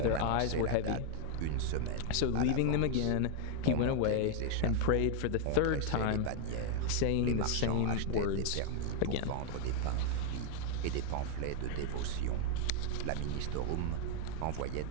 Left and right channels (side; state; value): both; different; correlation 0.00